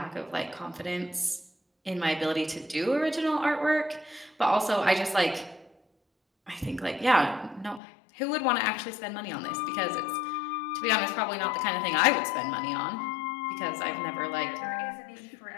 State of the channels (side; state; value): right; drops out; at 7.8 s